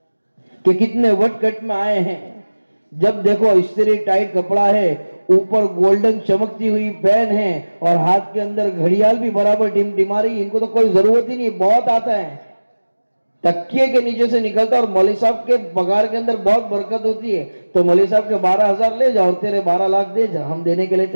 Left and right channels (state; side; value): inverted; both; correlation -1.00